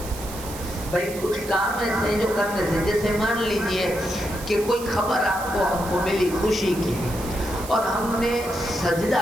بھائی کچھ کام ایسے ہیں جو کرنے سے، جیسے مان لیجئے کہ کوئی خبر آپ کو ہم کو ملی خوشی کی اور ہم نے سجدہ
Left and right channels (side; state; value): right; noise; hiss, 13 dB below the sound